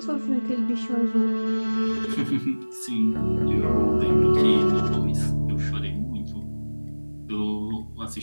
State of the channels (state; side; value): inverted; both; correlation -1.00